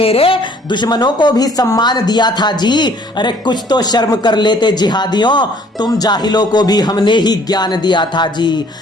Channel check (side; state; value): both; normal; correlation 0.58